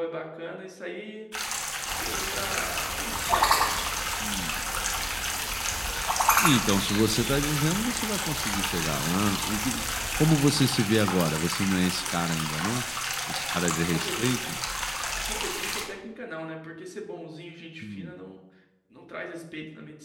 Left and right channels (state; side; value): identical; both; correlation 1.00